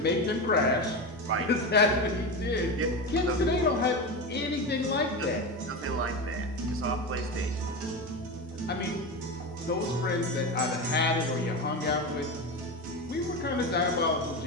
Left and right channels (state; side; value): normal; both; correlation 0.20